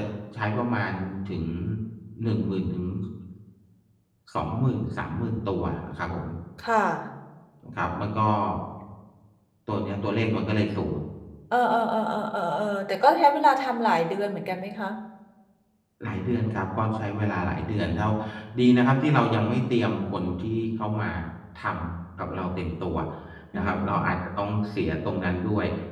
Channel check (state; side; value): identical; both; correlation 1.00